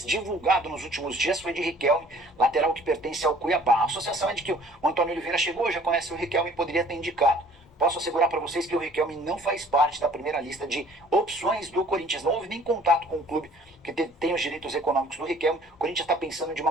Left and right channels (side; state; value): both; normal; correlation 0.53